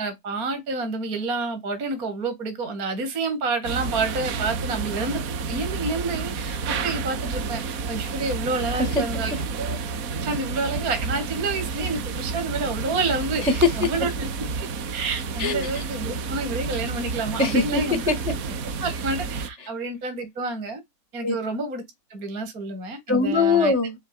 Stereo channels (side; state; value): left; late; 4.1 ms